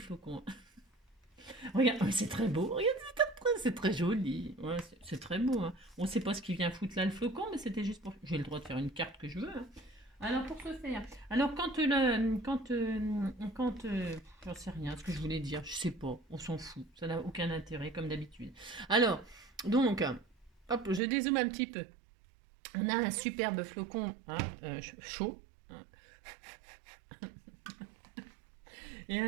Regarde, oh, c'est très beau, regarde, c'est très joli. Ouais, c'est très beau, hein. On ne sait pas ce qui vient foutre là le flocon, mais c'était juste pour... J'ai le droit de faire une carte que je veux, hein. Alors pour ce faire, alors j'en sais rien, ce que je voulais dire, je sais pas, on s'en fout, ça n'a aucun intérêt comme d'habitude. Alors, donc, hop, je dézoome un petit peu. On a un superbe flocon, hein, chaud. Hein. Et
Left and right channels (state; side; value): drops out; left; at 21.0 s